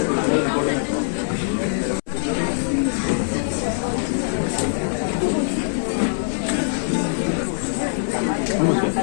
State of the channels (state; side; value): silent; right; 64 dB below the other